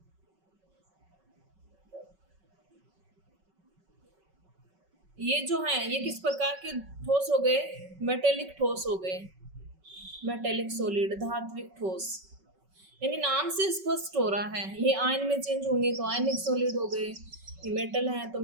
ये जो हैं ये किस प्रकार के ठोस हो गए, मेटेलिक ठोस हो गए, मेटेलिक सॉलिड, धात्विक ठोस। यानी नाम से स्पष्ट हो रहा है ये आयन में चेंज होंगे तो आयनिक सॉलिड हो गए, ये मेटल है तो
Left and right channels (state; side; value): late; left; 5.3 ms